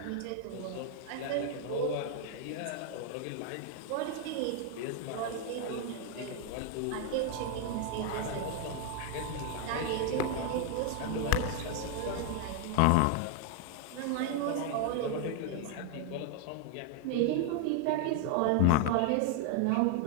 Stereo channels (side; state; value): both; different; correlation 0.00